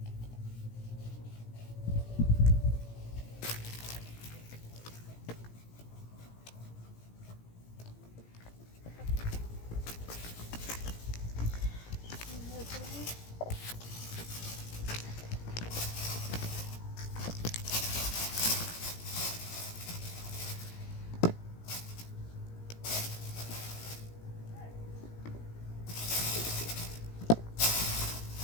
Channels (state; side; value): late; right; 17 ms